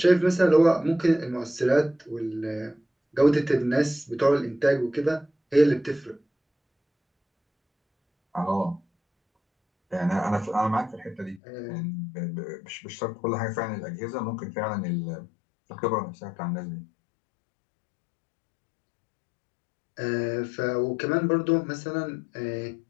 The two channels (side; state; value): right; drops out; at 11.4 s